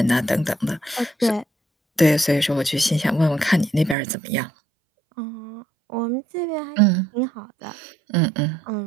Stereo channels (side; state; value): left; drops out; at 4.0 s